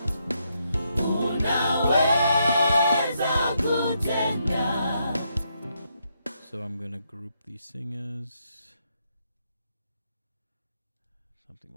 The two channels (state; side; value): inverted; both; correlation -0.78